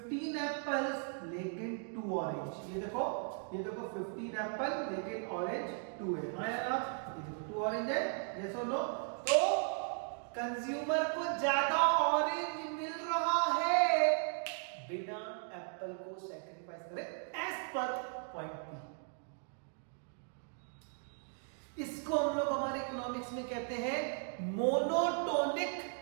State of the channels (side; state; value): left; silent; 53 dB below the other